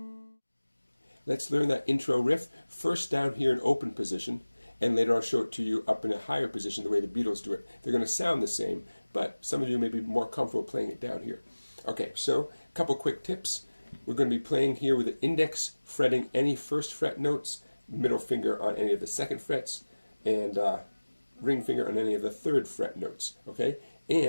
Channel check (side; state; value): both; inverted; correlation -1.00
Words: Let's learn that intro riff first down here in open position, and later I'll show it to you up in a higher position the way the Beatles do it. They're going to sound the same, but some of you may be more comfortable playing it down here. Okay, so a couple quick tips. We're going to be playing here with the index fretting any first fret notes, middle finger on any of the second frets, and ring finger on any of the third fret notes. Okay,